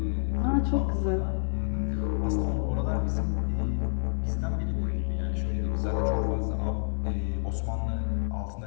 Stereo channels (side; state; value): right; silent; 59 dB below the other